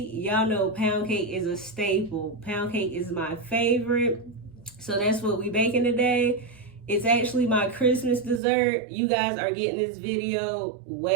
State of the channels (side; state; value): left; drops out; at 8.4 s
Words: y'all know pound cake is a staple. Pound cake is my favorite. So that's what we baking today. It's actually my Christmas dessert. You guys are getting this video